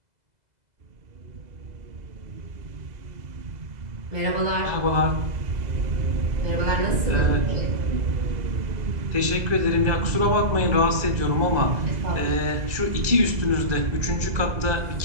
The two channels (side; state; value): left; late; 2.0 ms